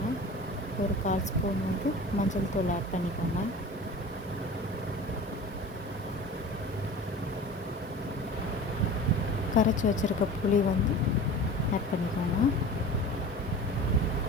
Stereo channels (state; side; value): normal; both; correlation 0.37